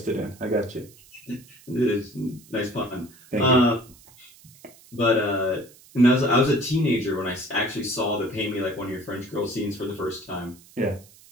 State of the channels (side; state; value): right; noise; hiss, 24 dB below the sound